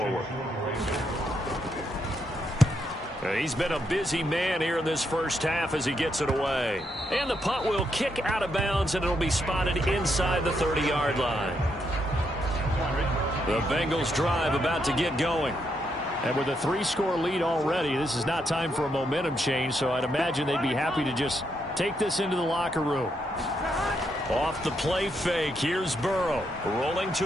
He's been a busy man here in this first half as he gets it away. And the punt will kick out of bounds, and it'll be spotted inside the 30-yard line. The Bengals drive about to get going. And with a 3-score lead already, this is not time for a momentum change, so I'd imagine they'd be happy to just take this into the locker room. Off the play fake, here's Burrow, rolling to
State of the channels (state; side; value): normal; both; correlation 0.79